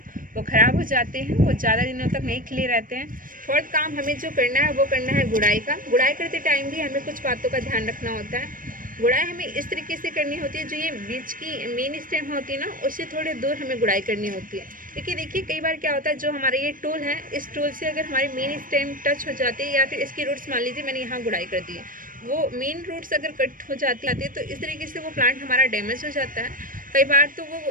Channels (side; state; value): left; late; 0.40 ms